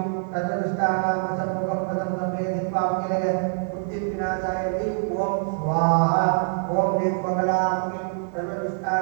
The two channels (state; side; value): silent; left; digital silence